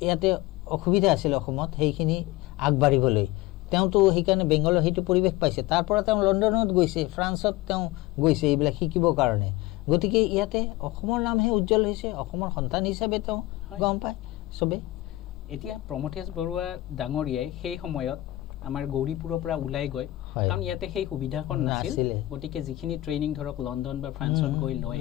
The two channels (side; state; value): right; quieter; 17.6 dB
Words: ইয়াতে অসুবিধা আছিল অসমত সেইখিনি আগবাঢ়িবলৈ তেওঁতো সেইকাৰণে বেংগলৰ সেইটো পৰিৱেশ পাইছে তাৰ পৰা তেওঁ লণ্ডনত গৈছে ফ্ৰান্সত তেওঁ গৈছে এইবিলাক শিকিবৰ কাৰণে গতিকে ইয়াতে অসমৰ নামহে উজ্জ্বল হৈছে অসমৰ সন্তান হিচাপে তেওঁ গম পায় চবেই এতিয়া প্ৰমথেশ বৰুৱা ডাঙৰীয়াই সেই সময়ত আমাৰ গৌৰীপুৰৰ পৰা ওলাই গৈ কাৰণ ইয়াতে সেই সুবিধাখন নাছিল গতিকে যিখিনি ট্ৰেইনিং ধৰক লণ্ডন বা ফ্ৰান্সত গৈ লয়